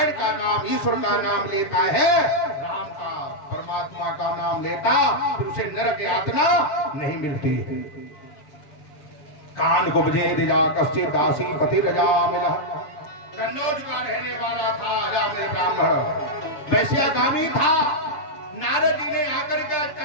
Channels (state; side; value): late; right; 7.0 ms